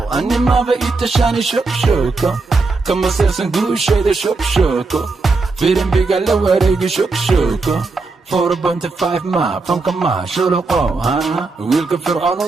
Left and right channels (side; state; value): left; quieter; 3.9 dB